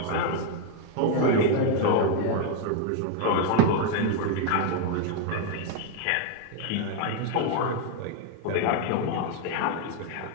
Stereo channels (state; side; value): different; both; correlation 0.01